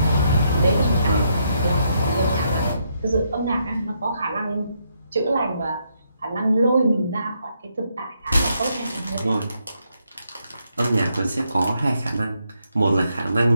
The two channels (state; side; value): inverted; both; correlation -0.77